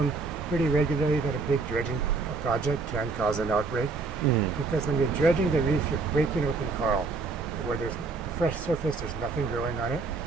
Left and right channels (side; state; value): left; quieter; 4.1 dB